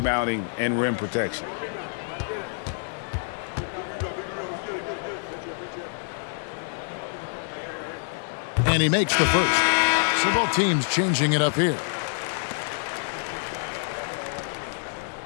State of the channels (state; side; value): silent; right; digital silence